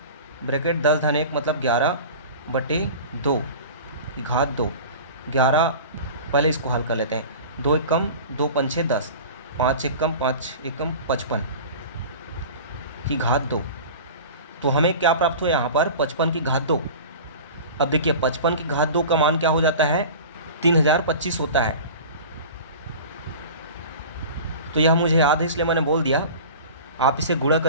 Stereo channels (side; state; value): both; inverted; correlation -0.36